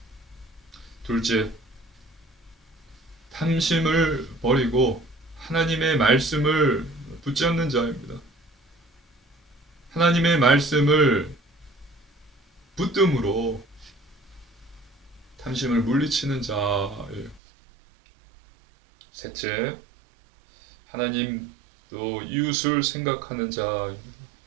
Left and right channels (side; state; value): left; drops out; at 17.4 s